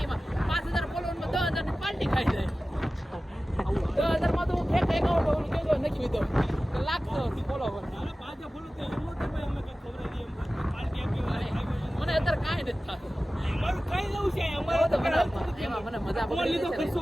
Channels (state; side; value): normal; both; correlation 0.96